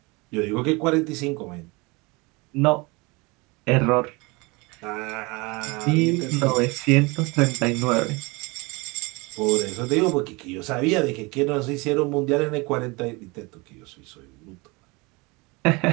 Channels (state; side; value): quieter; left; 26.0 dB